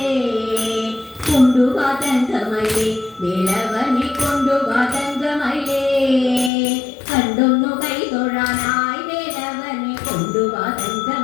കൊണ്ടു വാ തങ്കമയിലേ വേലവനെ കൊണ്ടു വാ തങ്കമയിലേ കണ്ടൊന്നു കൈതൊഴാനായി വേലവനെ കൊണ്ടു വാ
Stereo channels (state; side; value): drops out; right; at 6.5 s